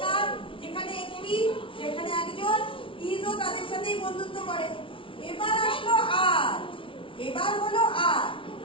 যেখানে একটি যেখানে একজন ইজও তাদের সাথেই বন্ধুত্ব করে। এবার আসলো এবার হলো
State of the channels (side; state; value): right; late; 0.25 ms